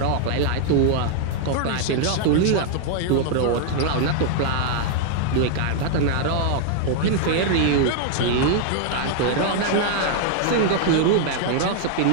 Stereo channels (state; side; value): different; both; correlation 0.00